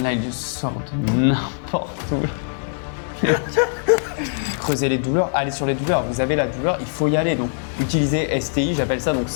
Là, il sort de n'importe où. Creuser les douleurs, aller sur les douleurs. Vous avez la douleur, il faut y aller. Donc, utilisez STI, j'appelle ça donc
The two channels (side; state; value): right; silent; digital silence